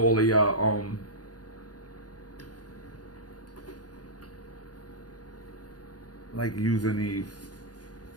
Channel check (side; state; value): right; late; 0.68 ms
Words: all of y'all like using these.